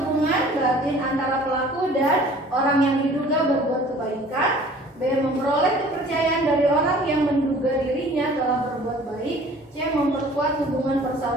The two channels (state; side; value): normal; both; correlation 0.50